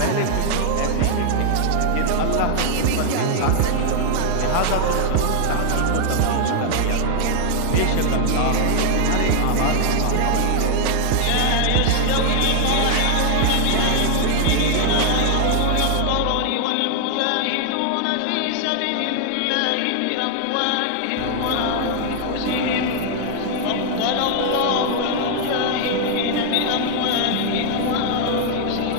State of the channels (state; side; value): different; both; correlation 0.00